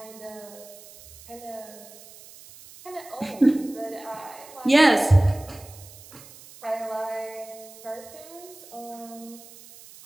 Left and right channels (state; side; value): noise; right; hiss, 19 dB below the sound